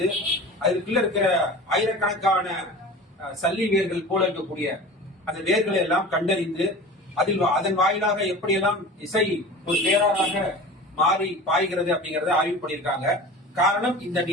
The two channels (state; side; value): normal; both; correlation 0.36